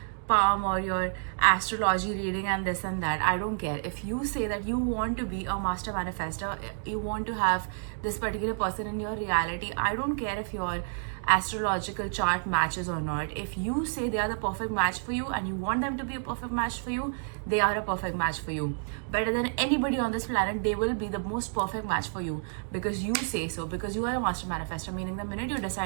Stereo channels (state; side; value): silent; left; digital silence